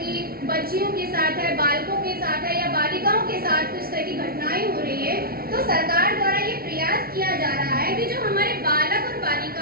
बच्चियों के साथ है, बालकों के साथ है या बालिकाओं के साथ कुछ तरह की घटनाएं हो रही है। तो सरकार द्वारा ये प्रयास किया जा रहा है कि जो हमारे बालक और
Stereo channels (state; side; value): late; left; 0.44 ms